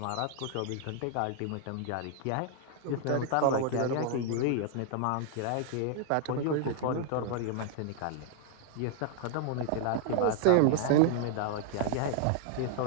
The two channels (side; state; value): both; different; correlation -0.01